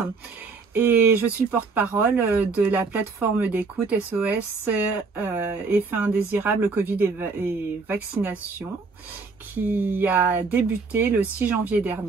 et je suis le porte-parole de la plateforme d'écoute SOS Effets indésirables Covid et vaccination qui a débuté le 6 janvier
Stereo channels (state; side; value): quieter; left; 4.4 dB